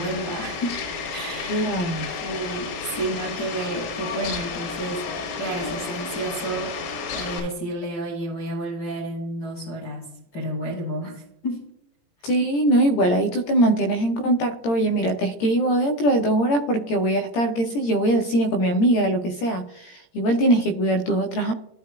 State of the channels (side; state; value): right; late; 17 ms